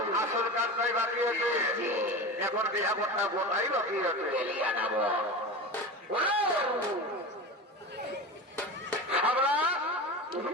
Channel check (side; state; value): both; normal; correlation 0.28